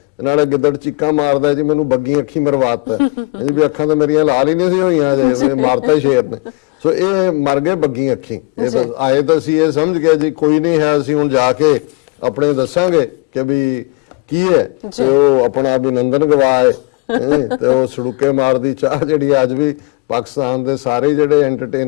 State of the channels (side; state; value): right; quieter; 27.8 dB